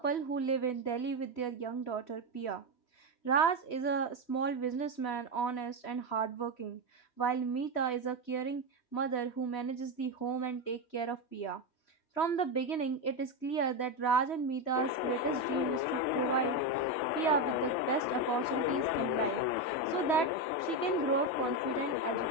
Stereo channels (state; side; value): late; right; 3.1 ms